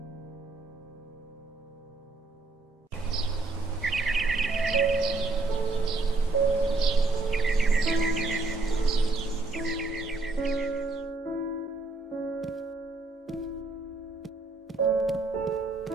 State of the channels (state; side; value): quieter; left; 3.1 dB